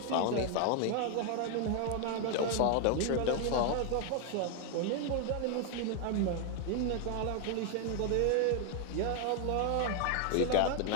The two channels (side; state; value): both; different; correlation 0.01